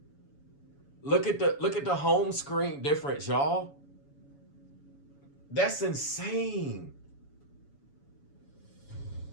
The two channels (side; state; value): right; late; 7.1 ms